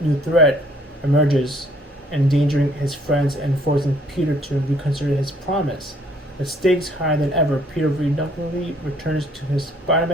new threat emerges, endangering his friends and forcing Peter to reconsider his promise. With stakes higher than ever, Peter reluctantly returns to his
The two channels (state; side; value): normal; both; correlation 0.62